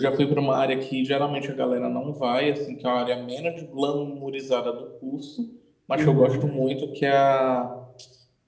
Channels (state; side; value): identical; both; correlation 1.00